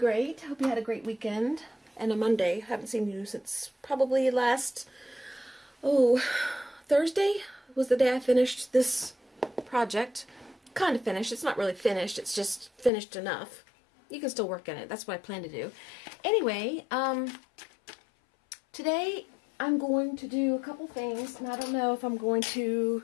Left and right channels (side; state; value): right; drops out; at 12.9 s